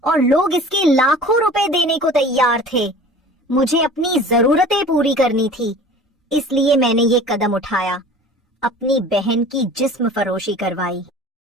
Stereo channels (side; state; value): both; normal; correlation 0.43